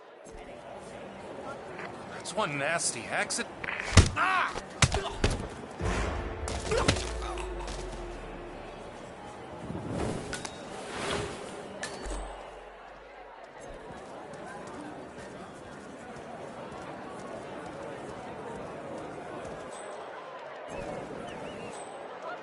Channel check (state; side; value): identical; both; correlation 1.00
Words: That's one nasty accident. Ah!